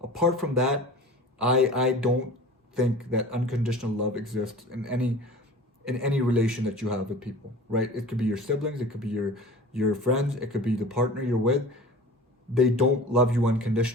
Apart from that, I don't think that unconditional love exists in any relation that you have with people, right? It could be your siblings, it could be your friends, it could be the partner you're with. They don't love you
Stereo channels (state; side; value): normal; both; correlation 0.39